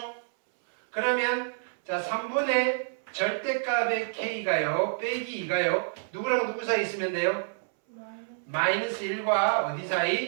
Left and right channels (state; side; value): silent; left; 59 dB below the other